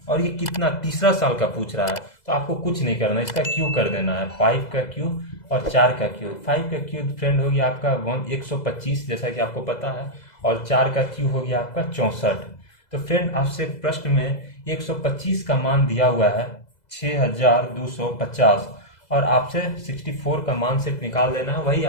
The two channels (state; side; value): late; right; 2.0 ms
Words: और ये कितना, तीसरा साल का पूछ रहा है, तो आपको कुछ नहीं करना, इसका क्यू कर देना है, 5 का क्यू और 4 का क्यू। 5 का क्यू फ्रेंड हो गया आपका 125 जैसा कि आपको पता है, और 4 का क्यू हो गया आपका 64। तो फ्रेंड आपसे प्रश्न में 125 का मान दिया हुआ है 6,250, और आपसे 64 का मान सिर्फ निकाल देना है, वही